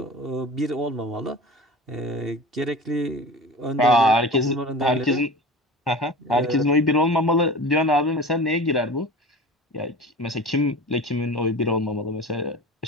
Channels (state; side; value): normal; both; correlation 0.35